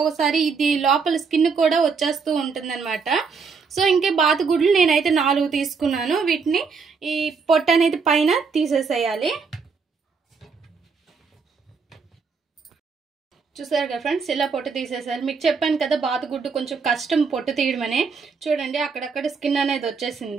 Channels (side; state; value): left; quieter; 5.2 dB